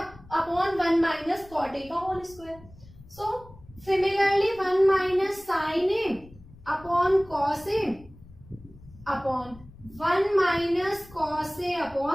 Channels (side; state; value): left; noise; rumble, 22 dB below the sound